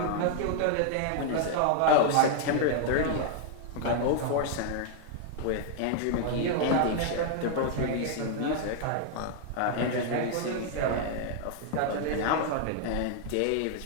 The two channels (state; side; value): different; both; correlation -0.01